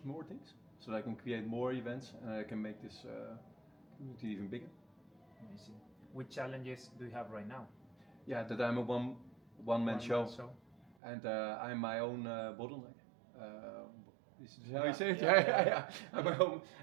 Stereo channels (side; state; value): left; drops out; at 10.9 s